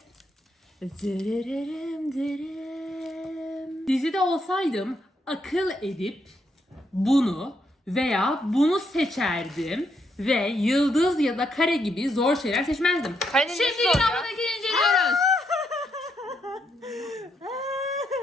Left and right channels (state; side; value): normal; both; correlation 0.77